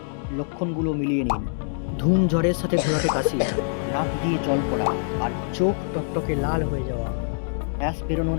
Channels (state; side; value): silent; right; digital silence